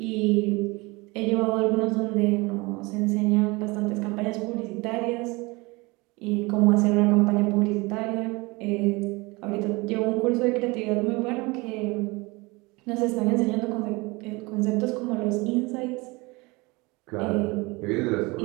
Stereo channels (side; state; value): left; quieter; 24.6 dB